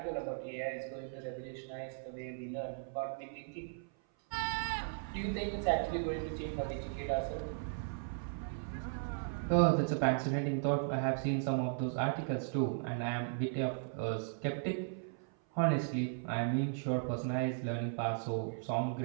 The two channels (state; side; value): silent; left; 53 dB below the other